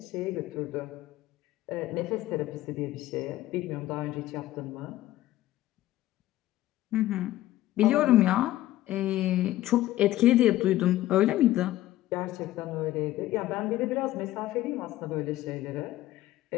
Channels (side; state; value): right; quieter; 15.1 dB